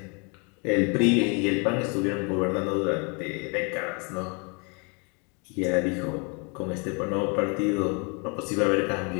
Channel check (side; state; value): right; quieter; 33.5 dB